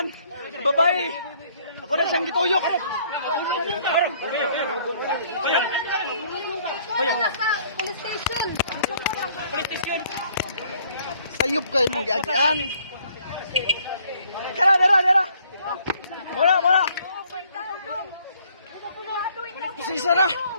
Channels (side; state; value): both; inverted; correlation -0.62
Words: Babae! Ako na siyang gituyok! Sayop kayo mong giagian! Kala, dara, dara! Muna, muna! Kusisa na!